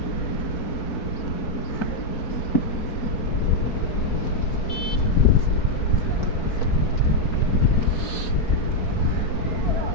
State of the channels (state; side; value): late; right; 4.6 ms